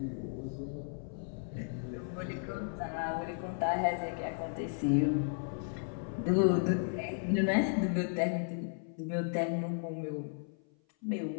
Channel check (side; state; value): right; silent; 55 dB below the other